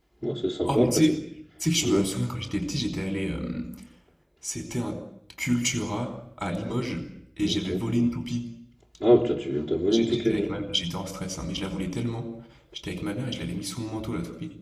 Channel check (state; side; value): identical; both; correlation 1.00